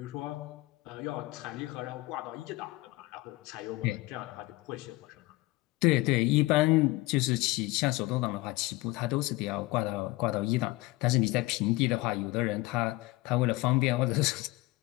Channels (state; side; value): quieter; right; 20.5 dB